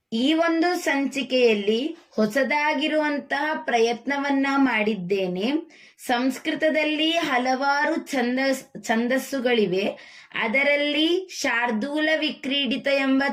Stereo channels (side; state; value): both; identical; correlation 1.00